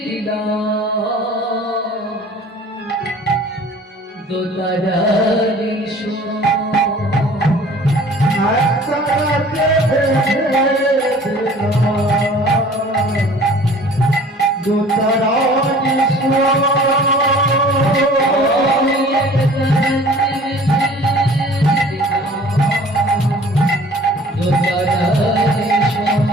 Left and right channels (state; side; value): normal; both; correlation 0.48